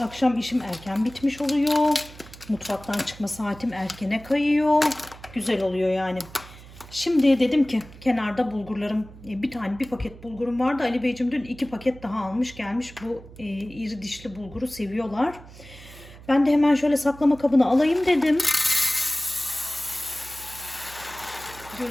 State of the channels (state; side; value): noise; right; hum, 19 dB below the sound